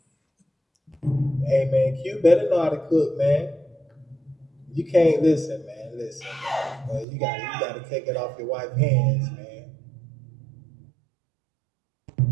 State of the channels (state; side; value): drops out; left; at 7.1 s